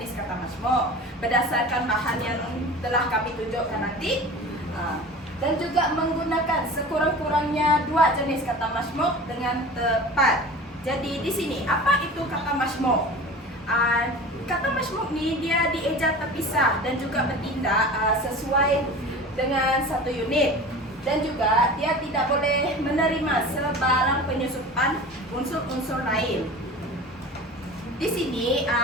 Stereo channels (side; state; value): both; normal; correlation 0.37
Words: kata majmuk berdasarkan bahan yang telah kami tunjukkan nanti, dan juga menggunakan sekurang-kurangnya dua jenis kata majmuk dengan tepat. Jadi di sini apa itu kata majmuk? Kata majmuk ni dia dieja terpisah dan juga bertindak sesuai dengan satu unit, dan juga dia tidak boleh menerima sebarang penyusupan unsur-unsur lain. Di sini